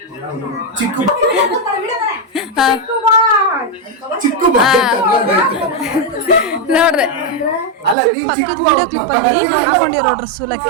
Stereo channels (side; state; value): left; drops out; at 8.0 s